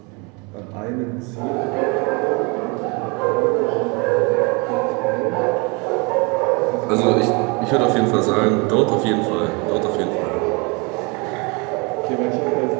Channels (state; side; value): quieter; left; 30.1 dB